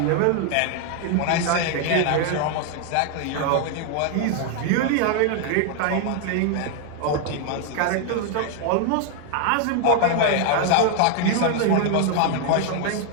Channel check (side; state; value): both; different; correlation 0.00